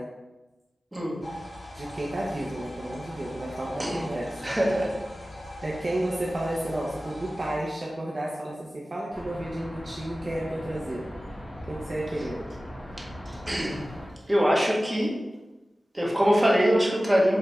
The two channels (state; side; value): normal; both; correlation 0.96